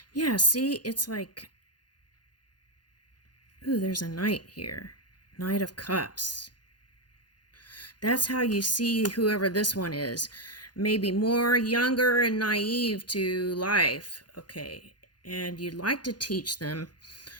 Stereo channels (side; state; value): right; late; 0.70 ms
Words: Yeah, see, it's like, ooh, there's a knight here. Knight of Cups. That's how you see whoever this one is. Maybe more younger and naive to life. Okay, and you'd like to teach them